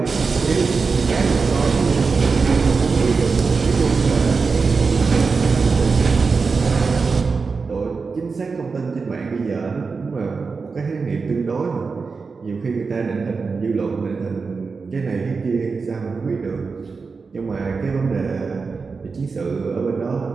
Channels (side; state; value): left; quieter; 4.7 dB